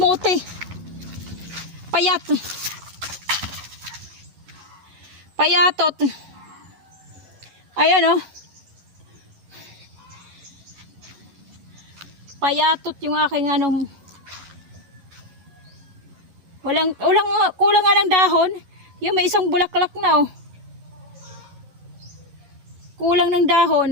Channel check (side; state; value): left; late; 11 ms